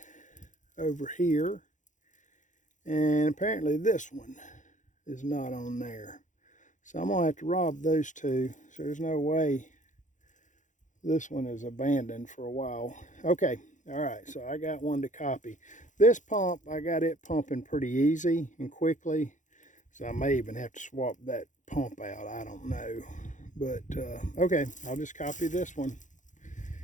over here, and apparently this one is not on there. So I'm gonna have to rob those two. So there's no way this one is abandoned for a while. Okay, all right, so I got one to copy. This pump, I got it pumping pretty easy and quickly. So I may even have to swap that pump out, I don't know. But okay, I'll just copy this one.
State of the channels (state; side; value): late; right; 0.36 ms